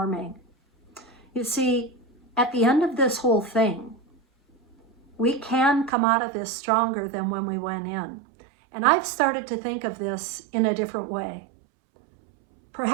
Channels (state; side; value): drops out; left; at 5.9 s